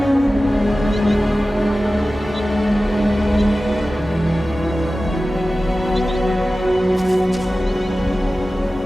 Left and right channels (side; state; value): both; normal; correlation 0.95